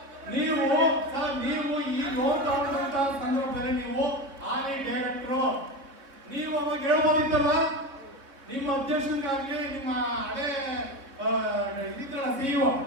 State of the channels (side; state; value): left; late; 3.8 ms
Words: ನೀವು ಸರ್, ನೀವು ಈ ಲೋನ್ ತಗೊಂಡಂತ ಸಂದರ್ಭದಲ್ಲಿ ನೀವು ಆನೆ ಡೈರೆಕ್ಟ್ರು, ನೀವು ಅವಾಗ ಹೇಳ್ಬೋದಿತ್ತಲ್ವಾ? ನಿಮ್ಮ ಅಧ್ಯಕ್ಷರಿಗಾಗ್ಲಿ ನಿಮ್ಮ ಹಳೆ ಇದ್ರಲ್ಲ ಸಿಇಒ